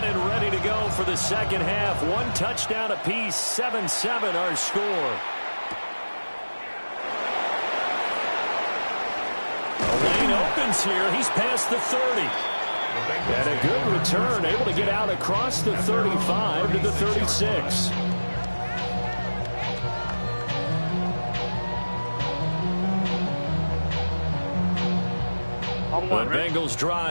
and ready to go for the 2nd half. 1 touchdown apiece. 7-7 our score. The lane opens here. He's past the 30. And a good return, able to get out across the 35 to the 36. The Bengals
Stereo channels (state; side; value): inverted; both; correlation -1.00